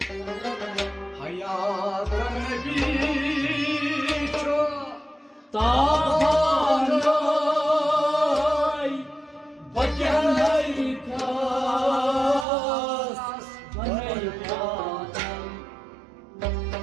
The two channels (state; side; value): drops out; left; at 12.5 s